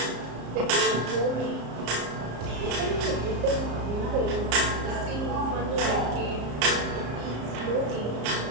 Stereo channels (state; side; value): late; left; 34 ms